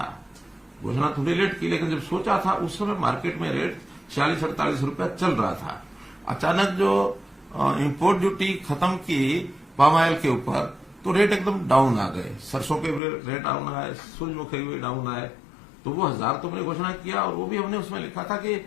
घोषणा थोड़ी लेट की, लेकिन जब सोचा था उस समय मार्केट में रेट 46-48 रुपया चल रहा था। अचानक जो इंपोर्ट ड्यूटी खत्म की पाम ऑयल के ऊपर, तो रेट एकदम डाउन आ गए। सरसों के रेट डाउन आए, सूरजमुखी भी डाउन आए। तो वो 1000 तो हमने घोषणा किया, और वो भी हमने उसमें लिखा था कि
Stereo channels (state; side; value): drops out; right; at 13.0 s